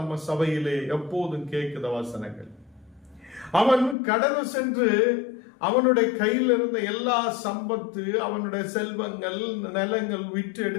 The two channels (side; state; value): right; drops out; at 4.0 s